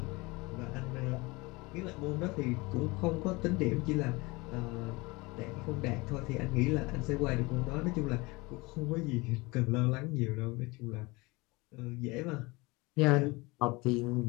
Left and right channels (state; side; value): quieter; right; 24.2 dB